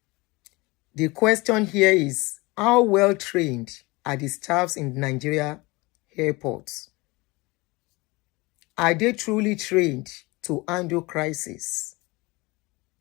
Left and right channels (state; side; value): quieter; right; 23.8 dB